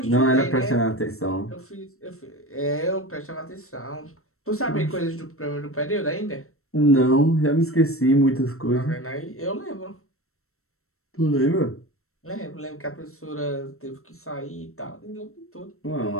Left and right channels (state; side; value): late; right; 0.63 ms